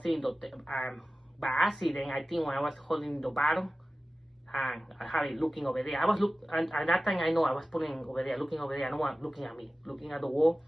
in the by accident, I think when I was holding the bottom, and I had it looking over there. I was and at that time I know I was putting over there, looking over there. No one looking at me, looking at the wall.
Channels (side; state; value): both; normal; correlation 0.96